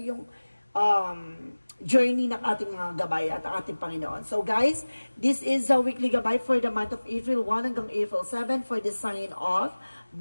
journey ng ating mga gabay at ating Panginoon. So guys, this is a weekly gabay for the month of April 1 hanggang April 7 for the sign of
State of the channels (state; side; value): inverted; both; correlation -1.00